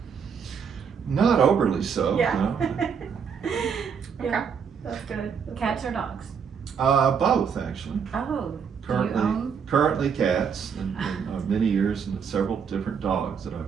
Not overly so, Yeah. no. Yeah, that's good. That's Cats or dogs? Both, actually. Oh, do you Currently, own? currently cats, and many years, and several different dogs that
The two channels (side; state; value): left; quieter; 6.8 dB